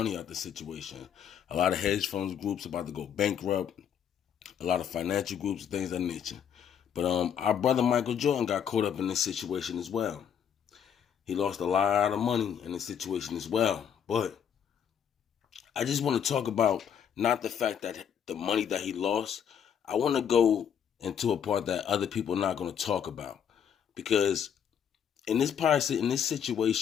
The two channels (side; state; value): right; quieter; 8.3 dB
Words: out the situation. A lot of hedge funds groups about to go bankrupt. A lot of financial groups, things of that nature. But our brother Michael Jordan got caught up in this situation as well. He lost a lot of money in this situation as well. But I just want to talk about not the fact that the money that he lost. I want to go into a part that other people are not going to talk about, because in this